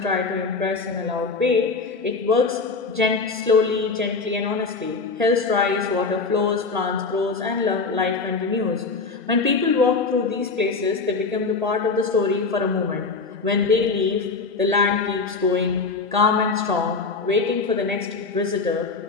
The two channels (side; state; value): right; quieter; 4.4 dB